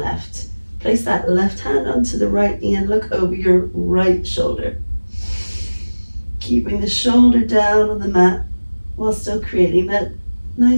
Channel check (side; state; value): both; inverted; correlation -1.00